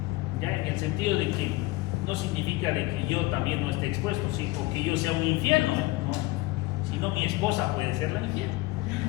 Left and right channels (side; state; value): right; quieter; 20.5 dB